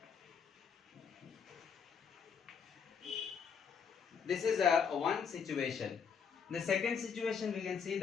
This is one situation. The second situation we can see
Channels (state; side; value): quieter; right; 6.6 dB